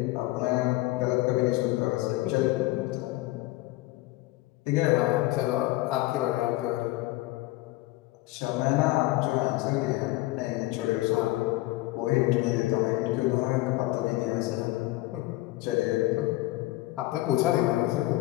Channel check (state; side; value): quieter; right; 18.7 dB